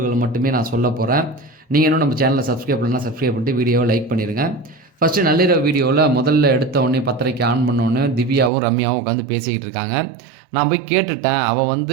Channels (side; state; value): left; drops out; at 8.5 s